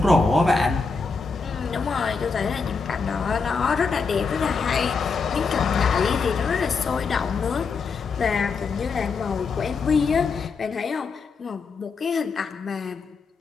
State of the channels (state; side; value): quieter; right; 4.8 dB